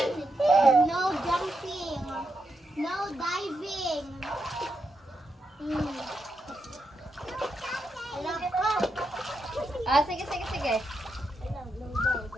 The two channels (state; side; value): normal; both; correlation 0.84